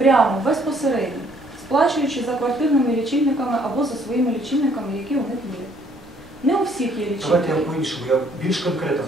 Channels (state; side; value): noise; right; rumble, 29 dB below the sound